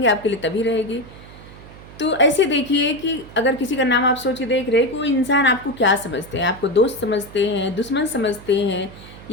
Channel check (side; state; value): right; noise; hum, 18 dB below the sound